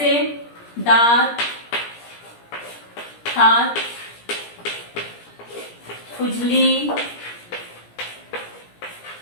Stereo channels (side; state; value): right; late; 17 ms